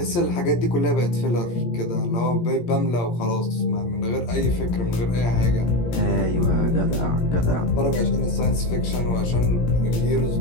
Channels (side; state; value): right; late; 17 ms